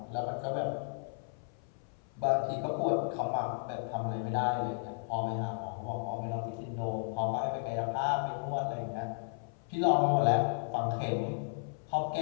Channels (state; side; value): silent; right; 55 dB below the other